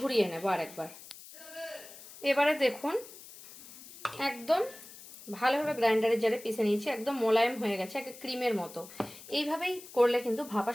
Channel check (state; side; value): noise; left; hiss, 17 dB below the sound